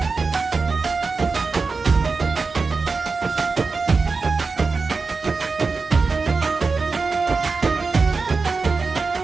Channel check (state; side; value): quieter; left; 4.4 dB